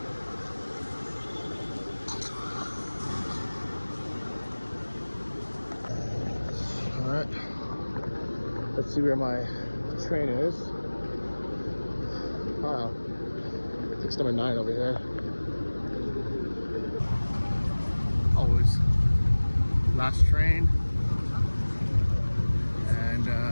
All right, let's see where my train is. Wow, it's number 9 over here. Always last train, and I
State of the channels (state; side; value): inverted; both; correlation -1.00